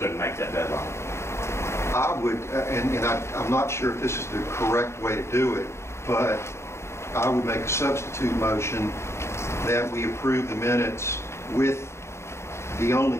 make that deadline. I would, I'm not sure if this is the correct way to do it, but I would make a substitute motion that we approve the minutes with the only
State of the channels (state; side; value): late; right; 0.13 ms